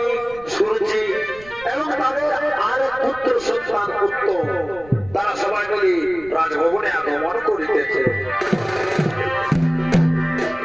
সুরুচি এবং তাদের আর এক পুত্র সন্তান উত্তম, তারা সবাই মিলে রাজভবনে আগমন করিতেছে।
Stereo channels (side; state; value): right; noise; rumble, 21 dB below the sound